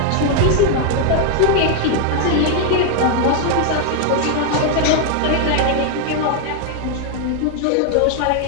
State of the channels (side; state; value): both; different; correlation 0.00